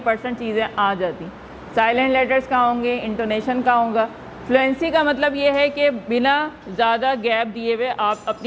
चीज़ें आ जाती। साइलेंट लेटर्स कहाँ होंगे, इंटोनेशन कहाँ होगा। फ्लुएंसी का मतलब ये है कि बिना ज़्यादा गैप दिए हुए आप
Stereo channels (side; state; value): both; identical; correlation 1.00